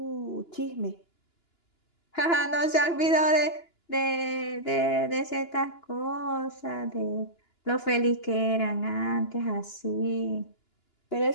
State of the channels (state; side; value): late; right; 2.9 ms